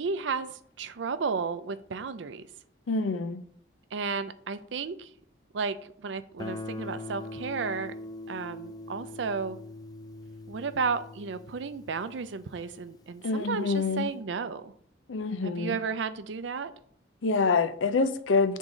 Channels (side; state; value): both; normal; correlation -0.10